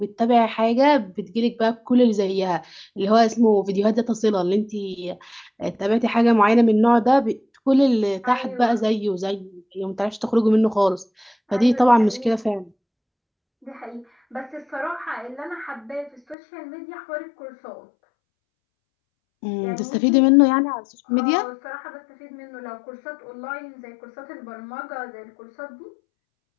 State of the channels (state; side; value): drops out; right; at 16.4 s